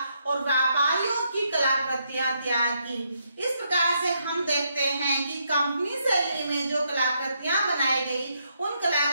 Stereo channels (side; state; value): both; inverted; correlation -0.77